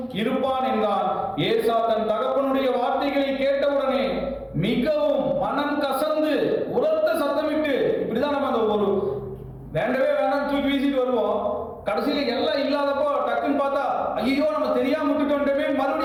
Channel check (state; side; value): identical; both; correlation 1.00